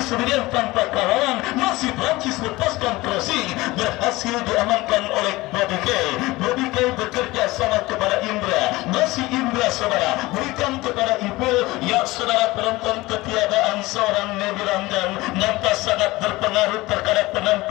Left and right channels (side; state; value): right; quieter; 20.1 dB